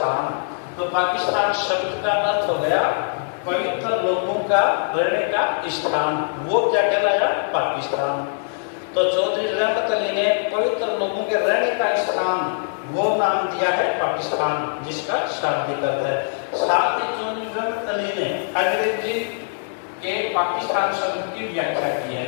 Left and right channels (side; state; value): right; silent; 64 dB below the other